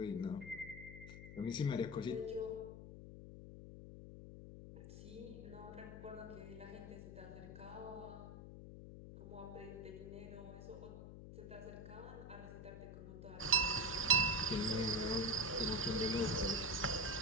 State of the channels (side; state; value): left; noise; hum, 12 dB below the sound